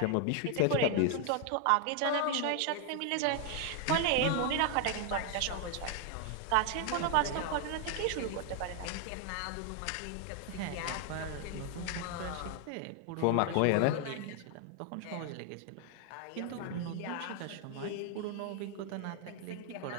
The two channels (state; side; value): different; both; correlation 0.00